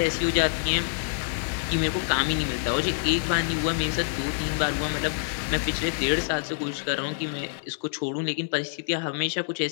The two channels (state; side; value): silent; right; digital silence